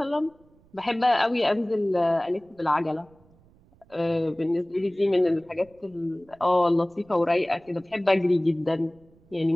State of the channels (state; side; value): noise; right; rumble, 30 dB below the sound